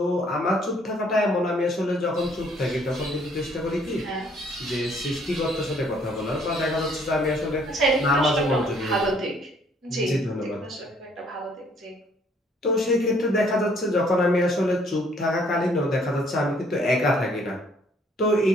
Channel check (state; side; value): normal; both; correlation 0.62